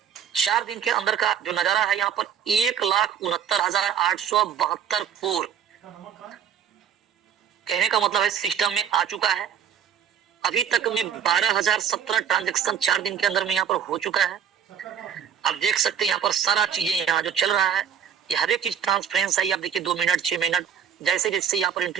4 दिन के अंदर का जो नजारा है, यहाँ पर 1,69,872 कोर, कहने का मतलब है सिस्टम में आ चुका है। अभी तक में 12,017 ट्रांजेक्शन 4 दिन के अंदर में यहाँ पर हो चुका है। आप देख सकते हैं यहाँ पर सारा चीजें यहाँ जो चल रहा है, ये हर एक चीज ट्रांसपेरेंस है। आप देखिए 2 मिनट 6 मिनट जैसे जैसे यहाँ पर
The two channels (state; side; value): quieter; left; 8.5 dB